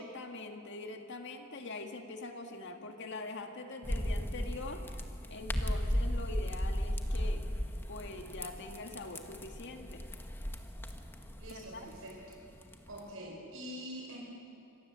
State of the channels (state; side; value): normal; both; correlation 0.77